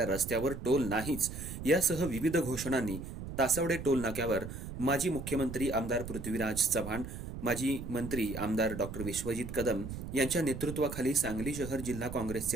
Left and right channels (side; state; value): right; noise; rumble, 8 dB below the sound